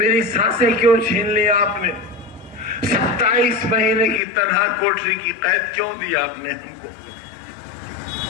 सांसें क्यों छीन ली आपने? 27 महीने की तनहा कोठरी की कैद क्यों दी आपने हमको?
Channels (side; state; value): right; drops out; at 4.2 s